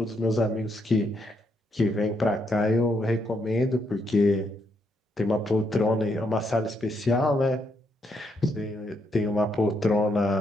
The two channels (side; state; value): both; normal; correlation 0.77